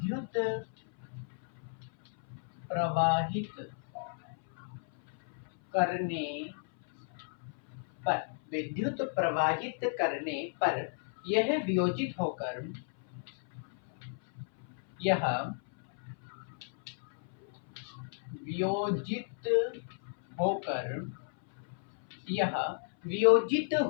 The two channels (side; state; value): right; silent; 56 dB below the other